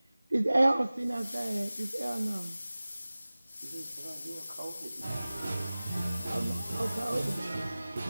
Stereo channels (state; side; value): inverted; both; correlation -0.98